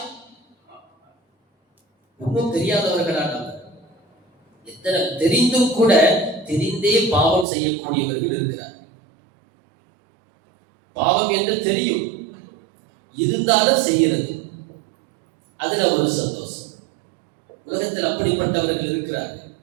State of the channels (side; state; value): left; drops out; at 7.5 s